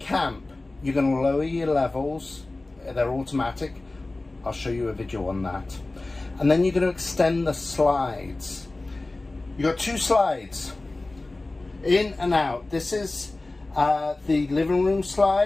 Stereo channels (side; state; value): right; quieter; 3.0 dB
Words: you're going to lower your levels. They're automatic. I'll show you a video on that. And then you're going to extend the slides. You've got two slides, in and out. This is the living room